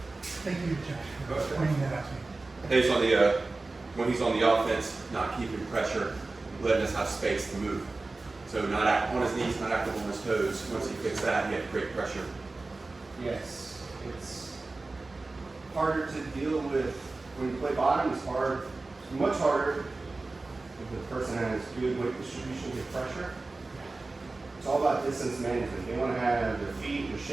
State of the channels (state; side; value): quieter; left; 3.4 dB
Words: thank you, Josh, for pointing that out to me. He's on the, when he's on the offense, not keeping pressure, letting us have space to move. So not act on his knees, not active on his toes. Once he fixed that, he had great pressure. Yes, it's harder to deal with when you play bottom. It's hard, it's much harder if the person has good weight distribution, good pressure. It's all about distance management. They want to have their feet, their